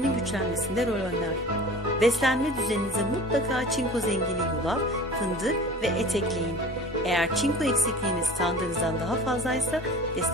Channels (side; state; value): both; normal; correlation 0.41